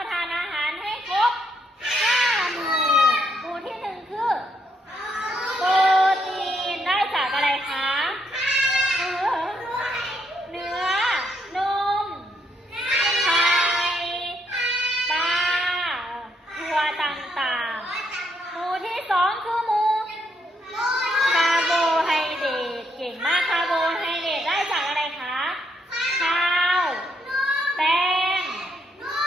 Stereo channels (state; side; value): normal; both; correlation 0.75